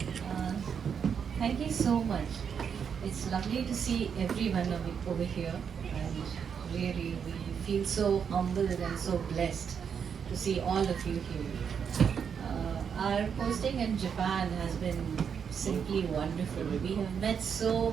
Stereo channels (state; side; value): quieter; left; 7.1 dB